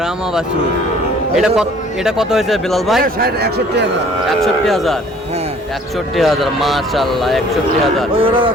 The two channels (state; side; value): normal; both; correlation 0.54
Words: বাছু। এটা কত হয়েছে বিলাল ভাই? 61,000। 61,000। হ্যাঁ 61,000 মাশাআল্লাহ 61,000। ওই ওরা